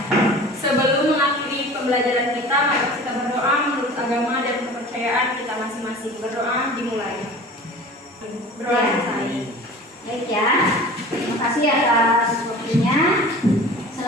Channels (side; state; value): both; normal; correlation 0.40